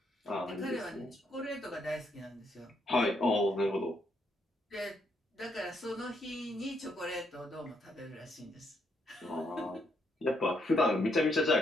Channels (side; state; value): both; normal; correlation 0.75